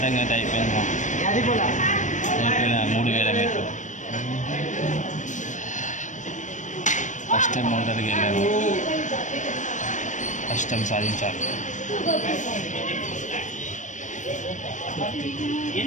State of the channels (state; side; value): late; right; 0.36 ms